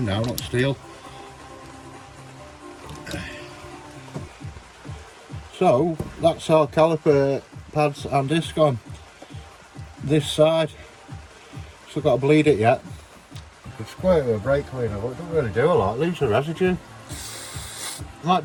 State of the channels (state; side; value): identical; both; correlation 1.00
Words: now, not steel. So that's our caliper pads and disc on this side. Still got to bleed it yet. It's quite a brake cleaner, but it doesn't really do a lot. It leaves a residue.